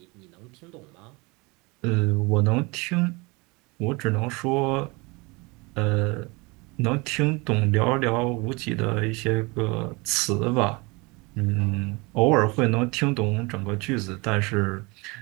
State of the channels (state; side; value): quieter; left; 26.5 dB